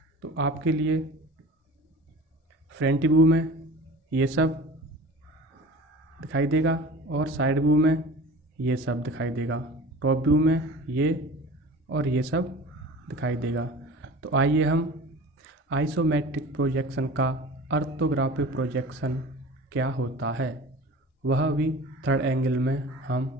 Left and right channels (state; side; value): normal; both; correlation 0.39